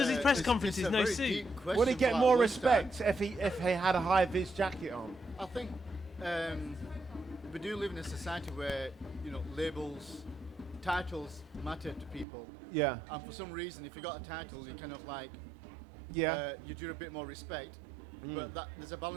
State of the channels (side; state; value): left; drops out; at 12.2 s